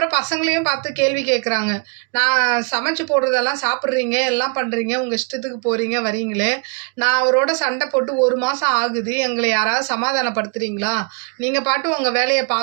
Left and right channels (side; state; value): left; quieter; 36.2 dB